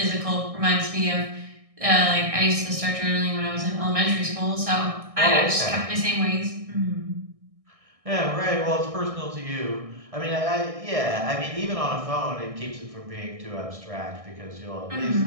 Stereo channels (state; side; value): late; left; 1.6 ms